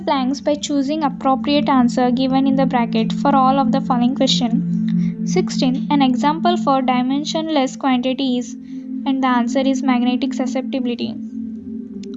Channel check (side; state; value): both; identical; correlation 1.00